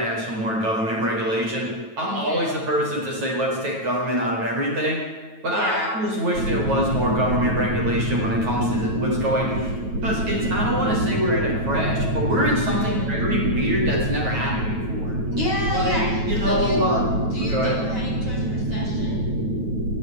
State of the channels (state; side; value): late; left; 9.2 ms